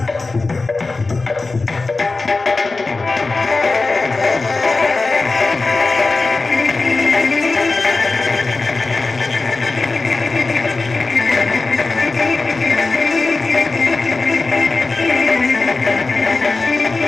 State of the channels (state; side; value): quieter; right; 3.7 dB